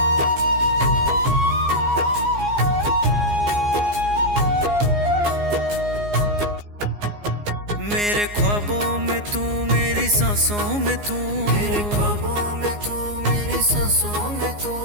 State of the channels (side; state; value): left; late; 14 ms